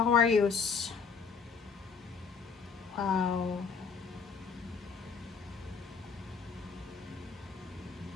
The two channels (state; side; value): quieter; right; 5.6 dB